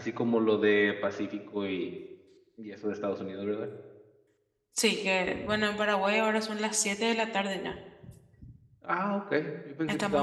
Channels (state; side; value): identical; both; correlation 1.00